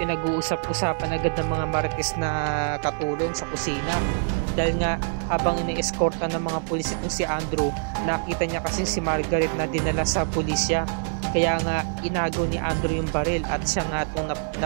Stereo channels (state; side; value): silent; left; 62 dB below the other